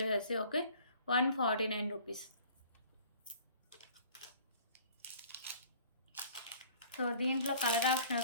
చేసేసి. Okay, 149 rupees. సో దీంట్లో కలర్ ఆప్షన్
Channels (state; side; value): inverted; both; correlation -0.51